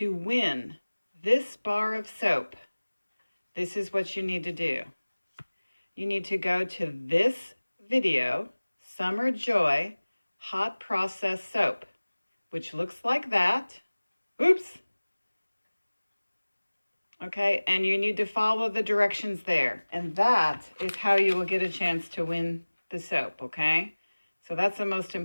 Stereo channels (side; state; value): both; inverted; correlation -1.00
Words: win this bar of soap, this is what you need to do. You need to go to this video, Summer Joy Hot Process Soap, which looks like that. Oops. Okay, and you need to follow the directions there. And that is how you will get a chance to win the soap, okay? So that's the most